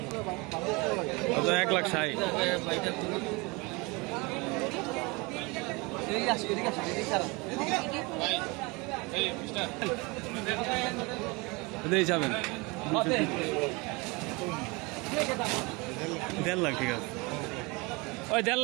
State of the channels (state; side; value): quieter; left; 26.6 dB